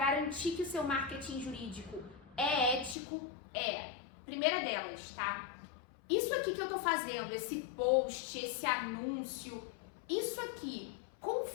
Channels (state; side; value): drops out; right; at 3.0 s